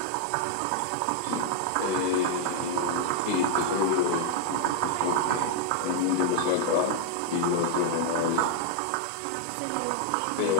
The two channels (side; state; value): both; different; correlation 0.00